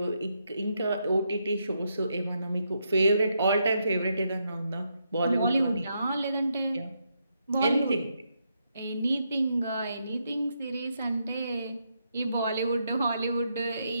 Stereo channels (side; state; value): both; inverted; correlation -0.80